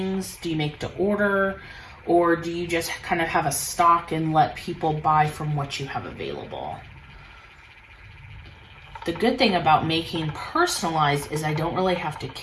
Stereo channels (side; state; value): both; identical; correlation 1.00